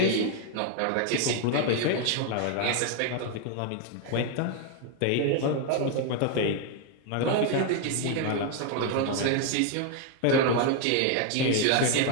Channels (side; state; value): both; different; correlation 0.00